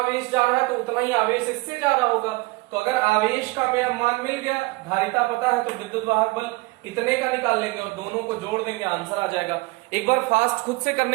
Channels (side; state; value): left; quieter; 23.6 dB